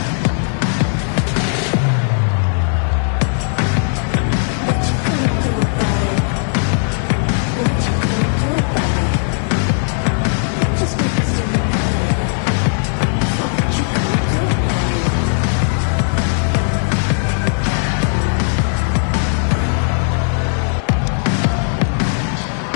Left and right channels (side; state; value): right; silent; 58 dB below the other